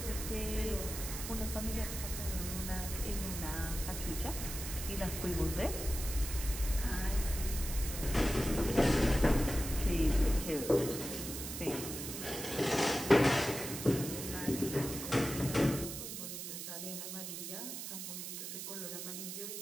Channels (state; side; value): noise; right; hiss, 7 dB below the sound